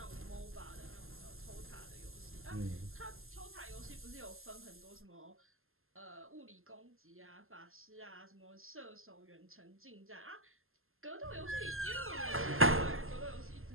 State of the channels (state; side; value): late; left; 0.61 ms